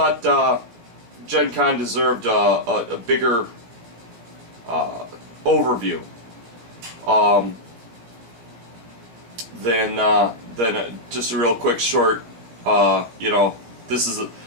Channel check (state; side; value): late; left; 17 ms